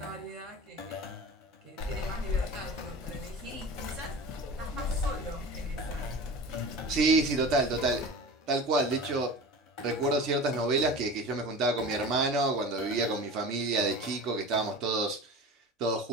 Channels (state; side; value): normal; both; correlation 0.34